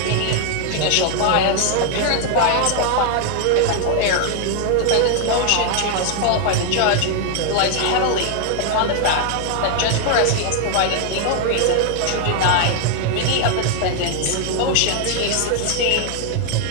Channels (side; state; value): both; different; correlation 0.00